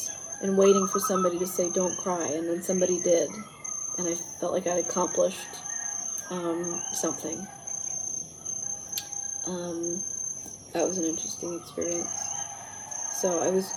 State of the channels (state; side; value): identical; both; correlation 1.00